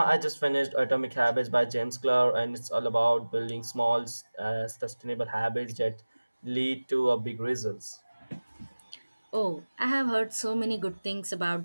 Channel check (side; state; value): both; inverted; correlation -1.00